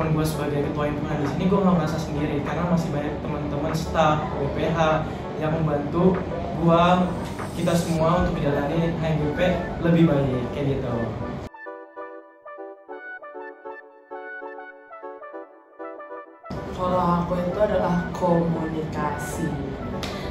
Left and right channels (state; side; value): identical; both; correlation 1.00